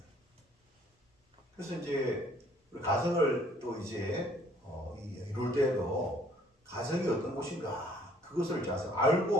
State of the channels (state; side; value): normal; both; correlation 0.60